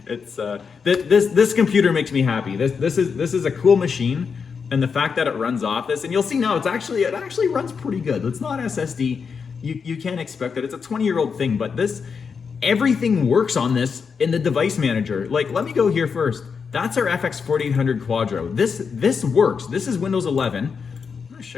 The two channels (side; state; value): right; quieter; 5.9 dB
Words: it's this computer makes me happy. This is a cool machine, and the fact that it runs off this, and you'll see now, it actually runs pretty good. It's not SSD. You can't expect that. It's a 20-year-old thing, but everything works on this in the device manager. Like, let me go here first. That's our FX 4800 Quadro. This works. This is Windows 11. I'm gonna